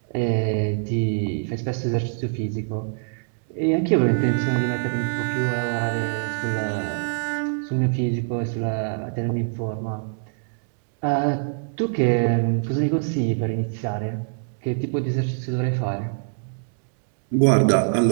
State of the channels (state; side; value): silent; left; digital silence